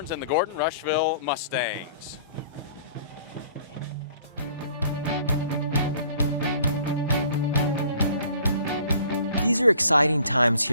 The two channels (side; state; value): both; inverted; correlation -0.52